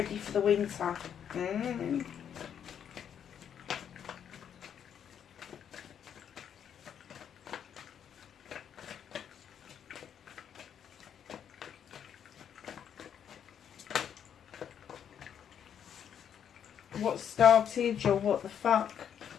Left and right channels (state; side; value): quieter; right; 8.7 dB